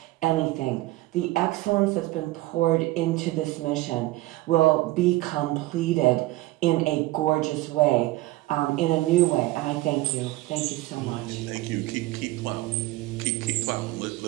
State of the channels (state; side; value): quieter; left; 18.4 dB